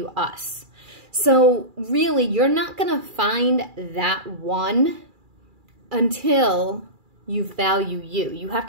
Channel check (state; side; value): late; left; 2.4 ms